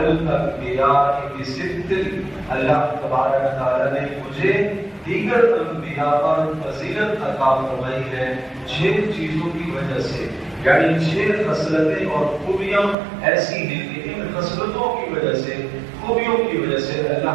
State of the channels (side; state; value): left; drops out; at 13.0 s